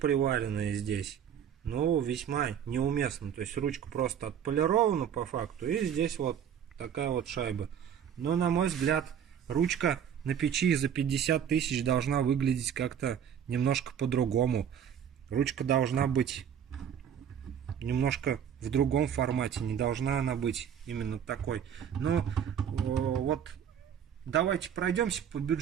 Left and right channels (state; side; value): quieter; left; 8.6 dB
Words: здесь, весьма неуместно. То есть ручка просто отполирована по факту, и здесь вот такая вот шайба. Но на мой взгляд ручка на печи за 50 тысяч должна выглядеть как-то немножко по-другому. Ручка должна быть немножко в другом формате, не должна она быть именно такой. Но вот давайте пройдемся по